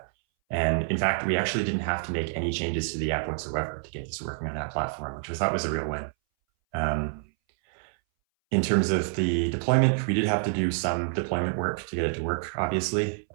And in fact, we actually didn't have to make any changes to the app whatsoever to get this working on that platform, which we thought was a real win. In terms of the deployment, we did have to do some deployment work to get it to work, obviously.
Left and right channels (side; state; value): left; silent; 60 dB below the other